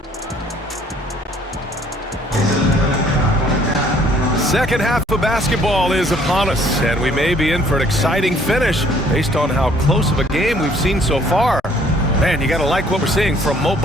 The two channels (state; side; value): normal; both; correlation 0.60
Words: Second half of basketball is upon us, and we may be in for an exciting finish based on how close of a game we've seen so far. Man, you got to like what we're seeing from Mo